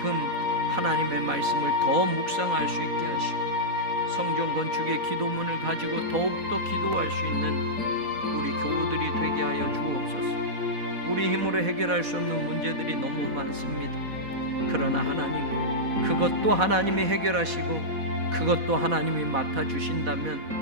하나님의 말씀을 더 묵상할 수 있게 하시고 성전 건축의 기도문을 가지고 더욱더 기도할 수 있는 우리 교우들이 되게 하여 주옵소서. 우리 힘으로 해결할 수 없는 문제들이 너무 많습니다. 그러나 하나님 그것도 하나님이 해결하시고 그것도 하나님이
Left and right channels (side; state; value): left; late; 4.1 ms